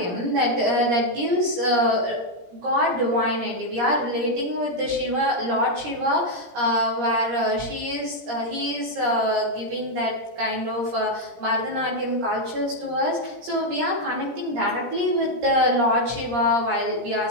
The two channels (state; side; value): late; left; 17 ms